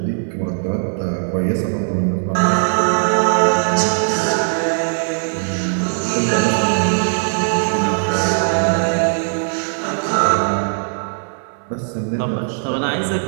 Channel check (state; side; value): silent; left; digital silence